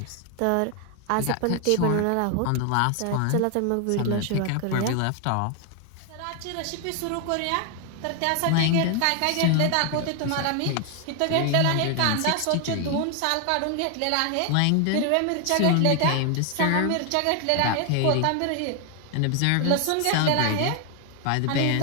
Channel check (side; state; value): both; different; correlation 0.01